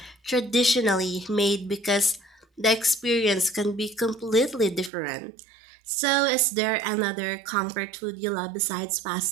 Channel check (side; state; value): left; drops out; at 4.9 s